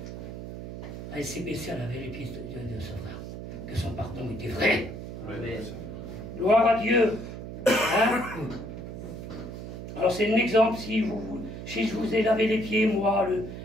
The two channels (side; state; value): right; noise; hum, 9 dB below the sound